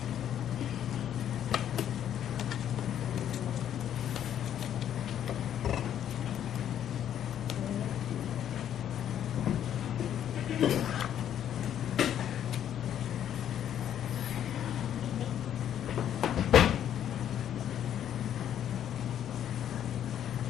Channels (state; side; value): quieter; right; 10.2 dB